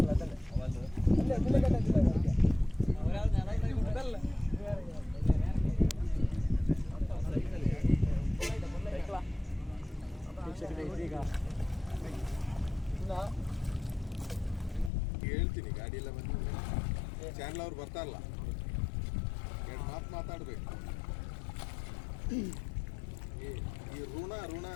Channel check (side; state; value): right; drops out; at 14.9 s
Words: ಹೇಳ್ತೀನಿ ಗಾಡಿ ಎಲ್ಲ ಬಂದಿದೆ. ಚಾನಲ್ ಅವ್ರು ಬರ್ತಾರಲ್ಲ, ಎರಡು ಮಾತು ಮಾತಾಡ್ಬೇಕು. ಈ ಋಣ